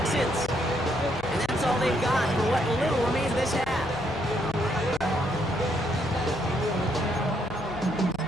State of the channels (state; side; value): noise; left; hum, 17 dB below the sound